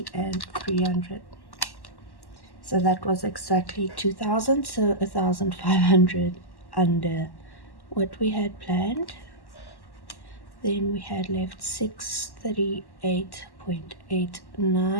and 300. So that was exactly 2,000, so 1,500 under what we had planned. Then we had left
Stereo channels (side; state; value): right; late; 1.1 ms